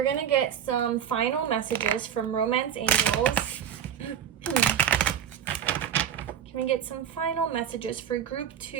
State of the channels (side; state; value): left; quieter; 9.0 dB